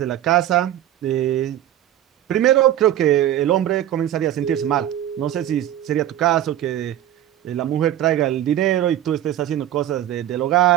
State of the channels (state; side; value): quieter; left; 12.2 dB